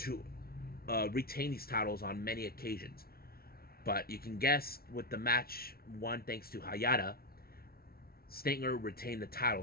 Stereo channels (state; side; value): late; right; 0.44 ms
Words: retain these titles on many occasions. But you can guess with the match won thanks to Hayata, Stinger retained the